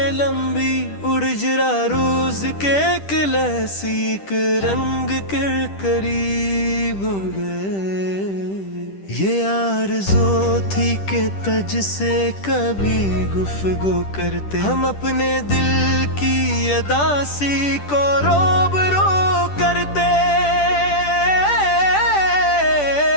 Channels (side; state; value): right; late; 10 ms